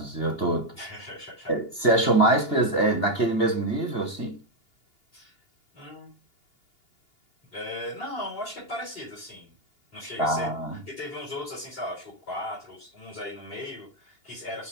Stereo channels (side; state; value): right; late; 2.8 ms